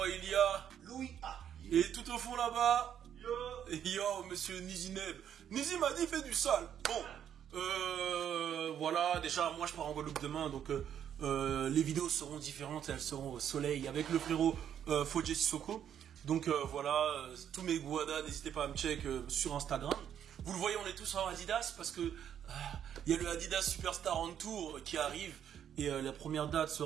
il y a Louis A. Et tout au fond là-bas, yo monsieur Nizineb. Nizi m'a dit fait du sale. Bon, voilà, déjà moi je pars en Guadeloupe demain, donc les vidéos seront différentes, elles seront au soleil avec le frérot Fodje Sissoko. Donc voilà, tous mes guadas, n'hésitez pas à me check sur Instagram. Vous le voyez, on est tous en Adidas parce que il y a le Adidas Superstar on Tour qui arrive et la première date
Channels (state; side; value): quieter; left; 9.4 dB